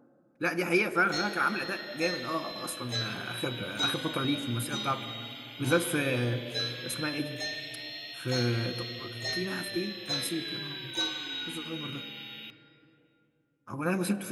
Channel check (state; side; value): identical; both; correlation 1.00